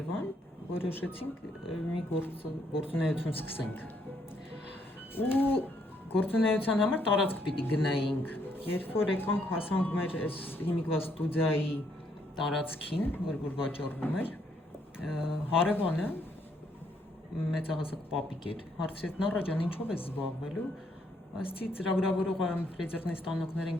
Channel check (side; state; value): both; normal; correlation 0.71